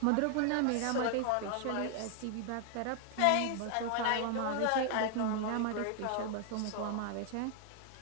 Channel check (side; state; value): both; different; correlation 0.00